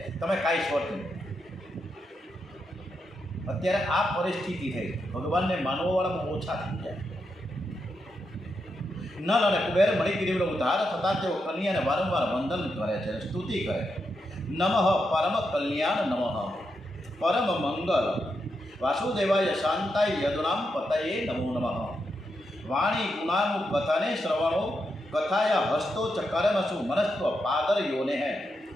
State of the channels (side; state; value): both; normal; correlation 0.84